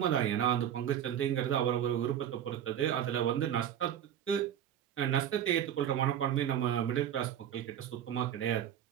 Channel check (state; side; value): quieter; left; 10.1 dB